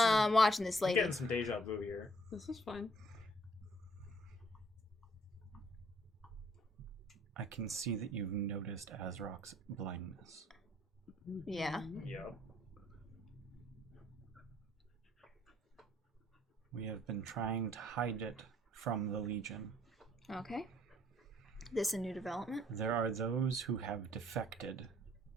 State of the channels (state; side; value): normal; both; correlation 0.64